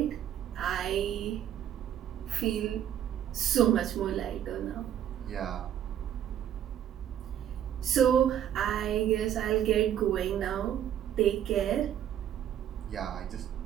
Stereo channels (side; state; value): left; quieter; 10.4 dB